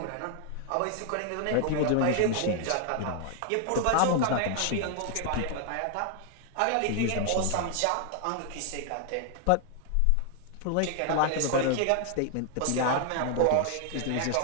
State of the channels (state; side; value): different; both; correlation 0.00